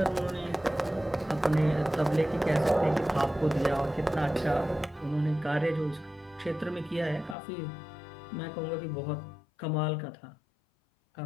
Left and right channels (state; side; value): drops out; right; at 7.4 s